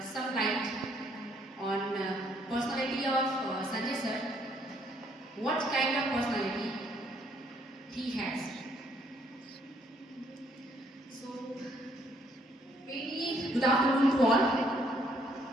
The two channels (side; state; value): both; normal; correlation 0.67